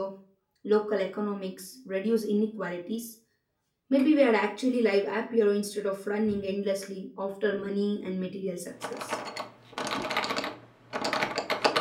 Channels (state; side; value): identical; both; correlation 1.00